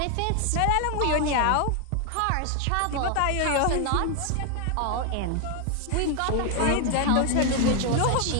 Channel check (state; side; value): different; both; correlation 0.00